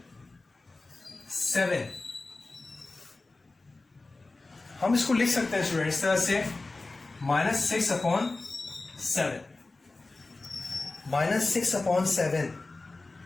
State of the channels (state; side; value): quieter; right; 3.3 dB